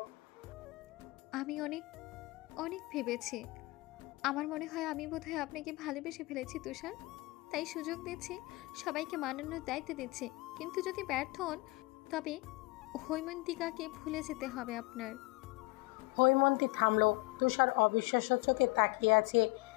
আমি অনেক অনেক ভেবেছি। আমার মনে হয় আমি বোধহয় আপনাকে ভালোবেসে ফেলেছি তুষার। তাই সুযোগ দিচ্ছি, সবাইকে মানানোর দায়িত্ব দিচ্ছি। কিন্তু যদি ব্যর্থ হন তবে হৈমন্তিকাকে ভুলে যেতে হবে আপনার। হৈমন্তী থামল। তুষার অবিশ্বাস্য চোখে তাকিয়ে আছে,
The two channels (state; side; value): quieter; right; 23.3 dB